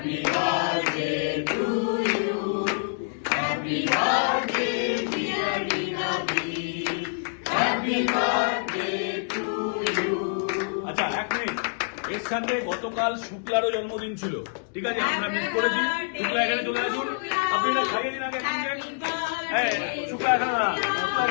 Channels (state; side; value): silent; right; digital silence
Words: birthday to you. Happy birthday, dear Rinadi. Happy birthday to you. আচ্ছা, এক মিনিট। এর সাথে গতকাল শুক্লারও জন্মদিন ছিল, ঠিক আছে? আমরা মিস করেছি। শুক্লা এখানে চলে আসুন, আপনি এটা খাইয়ে দিন আগে। হ্যাঁ, শুক্লা এখানে না, শুক্লা